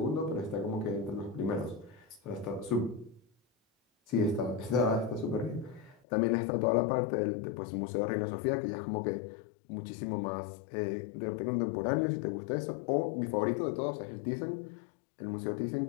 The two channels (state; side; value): drops out; right; at 6.0 s